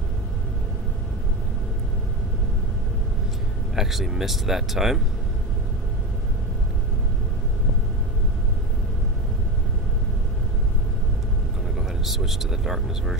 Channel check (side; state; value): both; normal; correlation 0.22